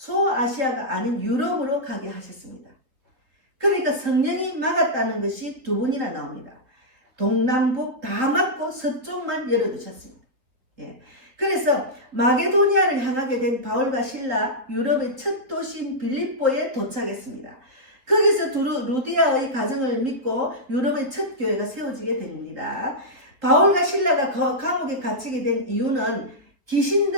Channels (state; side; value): late; left; 4.0 ms